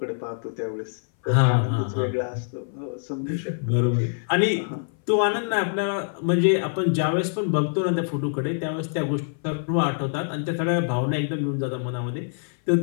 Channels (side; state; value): right; silent; 58 dB below the other